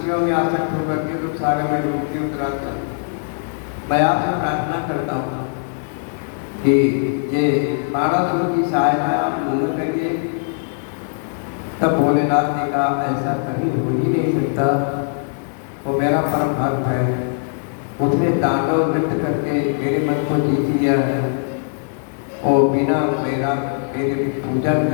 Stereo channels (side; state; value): right; silent; digital silence